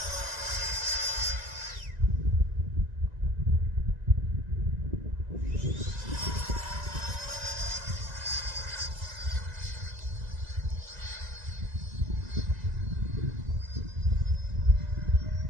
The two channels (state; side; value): late; left; 1.9 ms